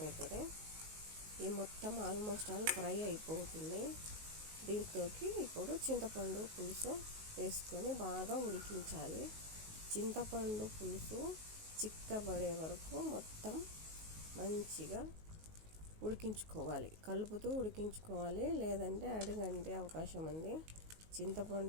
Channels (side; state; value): left; late; 19 ms